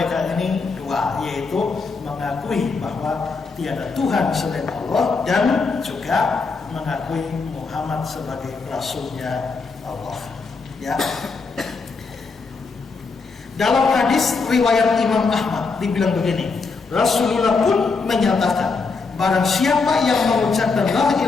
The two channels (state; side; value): quieter; right; 4.4 dB